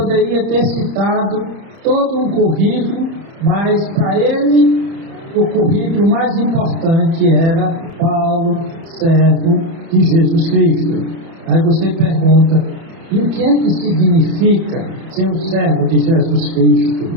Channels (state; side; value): late; left; 30 ms